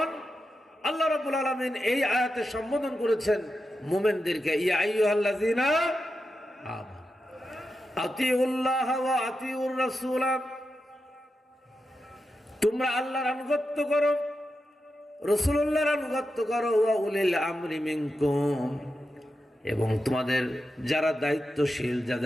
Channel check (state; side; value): normal; both; correlation 0.89